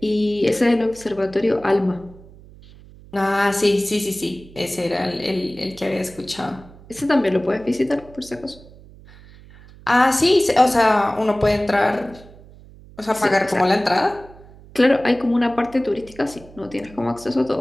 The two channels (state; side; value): noise; right; hum, 22 dB below the sound